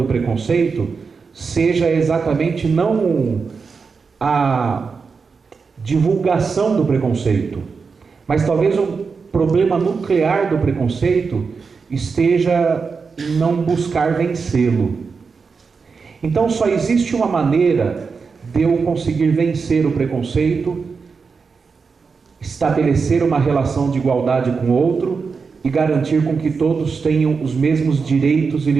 preconceito seja exatamente não a divulgação do preconceito, mas talvez o problema nuclear do preconceito esteja em não buscar vencê-lo. Então só existe uma maneira de eu conseguir vencer o preconceito, estabelecer uma relação de igualdade com o outro e garantir com que todos tenham os mesmos direitos e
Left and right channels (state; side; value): quieter; left; 5.1 dB